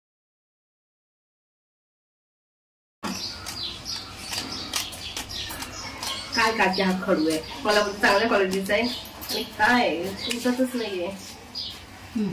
काय काकी, हा खडू आहे. मला चांगल्या क्वालिटीचा आहे आणि काय उठतच नाहीये.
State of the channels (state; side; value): identical; both; correlation 1.00